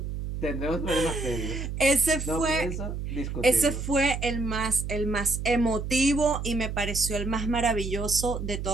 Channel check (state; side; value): noise; right; hum, 5 dB below the sound